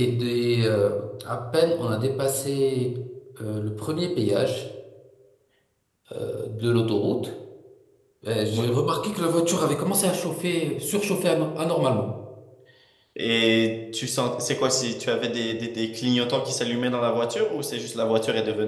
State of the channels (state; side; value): identical; both; correlation 1.00